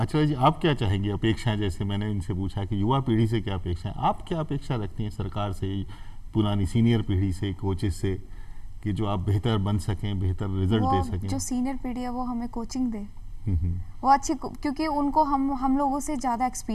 जी, आप क्या चाहेंगे? अपेक्षाएं, जैसे मैंने इनसे पूछा कि युवा पीढ़ी से क्या अपेक्षाएं, आप क्या अपेक्षा रखती हैं सरकार से, पुरानी सीनियर पीढ़ी से, कोचेस से, कि जो आप बेहतर बन सकें, बेहतर रिजल्ट दे सकें? जो सीनियर पीढ़ी है वो हमें कोचिंग दे, वो अच्छी, क्योंकि उनको हम लोगों से ज़्यादा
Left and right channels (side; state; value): both; identical; correlation 1.00